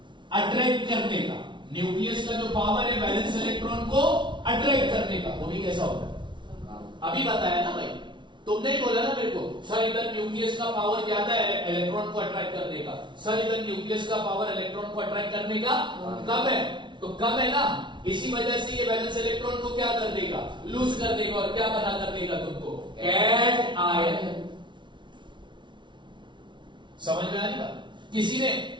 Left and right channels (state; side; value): late; left; 0.23 ms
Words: अट्रैक्ट करने का, न्यूक्लियस का जो पावर है वैलेंस इलेक्ट्रॉन को अट्रैक्ट करने का, वो भी कैसा होता है, अभी बताया ना भाई, तुमने ही बोला ना मेरे को, सर इधर न्यूक्लियस का पावर ज्यादा है इलेक्ट्रॉन को अट्रैक्ट करने का, सर इधर न्यूक्लियस का पावर इलेक्ट्रॉन को अट्रैक्ट करने का कम है, तो कम है ना, इसी वजह से ये वैलेंस इलेक्ट्रॉन को क्या कर देगा, लूज कर देगा, और क्या बना कर देगा तुमको, कैट आयन। समझ में आ रही बात?